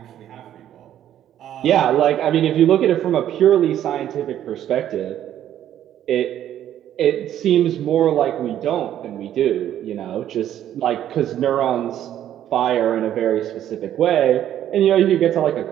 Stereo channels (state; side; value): quieter; left; 11.2 dB